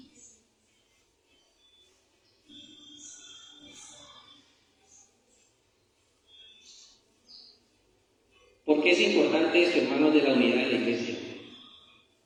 ¿Por qué es importante esto, hermanos, de la unidad de la iglesia?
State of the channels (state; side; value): identical; both; correlation 1.00